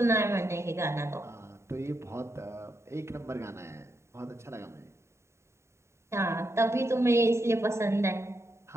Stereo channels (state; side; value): late; left; 0.13 ms